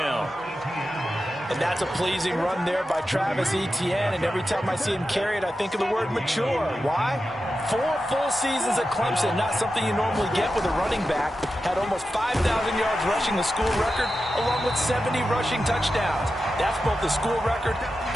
And that's a pleasing run there by Travis Etienne. And every time I see him carry it, I think of the word mature. Why? 4 full seasons at Clemson, not something you normally get with a running back. Had almost 5,000 yards rushing, the school record, along with 70 rushing touchdowns. That's both the school record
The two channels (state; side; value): normal; both; correlation 0.91